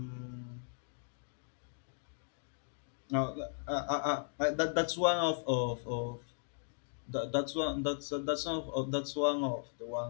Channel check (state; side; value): silent; right; digital silence